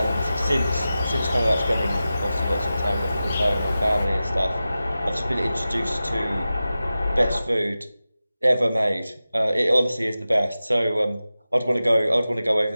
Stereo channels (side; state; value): both; inverted; correlation -0.94